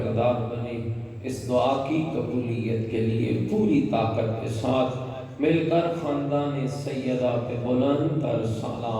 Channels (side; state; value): both; identical; correlation 1.00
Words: بنے۔ اس دعا کی قبولیت کے لیے پوری طاقت کے ساتھ مل کر خاندان سیدہ پہ بلند تر